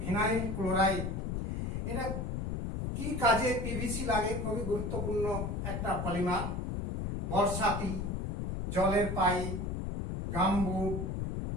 ক্লোরাইড এটা কি কাজে পিভিসি লাগে? খুবই গুরুত্বপূর্ণ একটা পলিমার। বর্ষাতি, জলের পাইপ, গামবুট,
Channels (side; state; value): left; noise; rumble, 2 dB below the sound